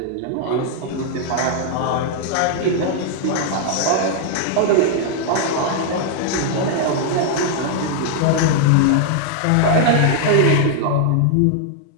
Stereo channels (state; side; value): different; both; correlation -0.01